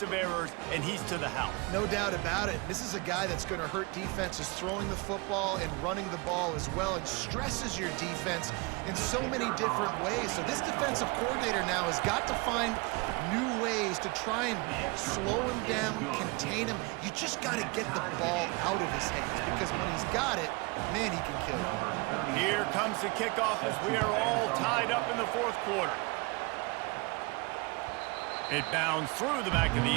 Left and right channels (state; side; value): quieter; left; 27.6 dB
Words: of errors, and he's to the house. No doubt about it. This is a guy that's going to hurt defenses throwing the football and running the ball as well. It stresses your defense in so many different ways. So this defensive coordinator now has got to find new ways to try and slow him down, contain him. You just got to get the ball out of his hands because when he's got it, man, he can kill you. Here comes the kickoff as we are all tied up in the fourth quarter. It bounds through the back of the